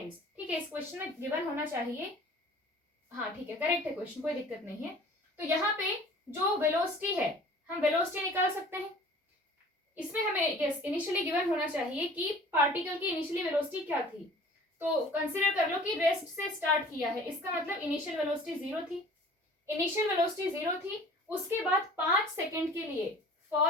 ठीक है, इस क्वेश्चन में given होना चाहिए, हाँ ठीक है, करेक्ट है क्वेश्चन, कोई दिक्कत नहीं है। तो यहाँ पे जो वेलोसिटी है, हम वेलोसिटी निकाल सकते हैं, इसमें हमें यस इनिशियली गिवन होना चाहिए कि पार्टिकल की इनिशियली वेलोसिटी क्या थी। तो कंसीडर कर लो कि रेस्ट से स्टार्ट किया है, इसका मतलब इनिशियल वेलोसिटी 0 थी, इनिशियल वेलोसिटी 0 थी, उसके बाद 5 सेकेंड के लिए,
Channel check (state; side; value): normal; both; correlation 0.47